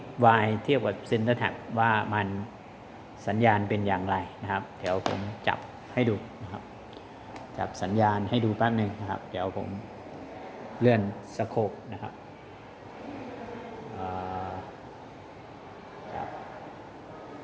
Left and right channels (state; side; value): identical; both; correlation 1.00